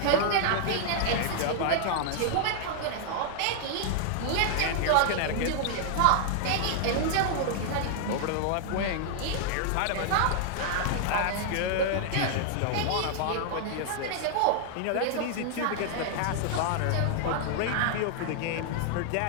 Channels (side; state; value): both; different; correlation 0.00